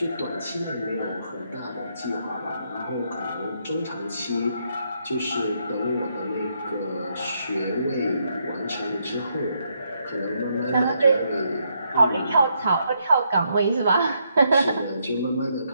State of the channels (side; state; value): both; inverted; correlation -0.77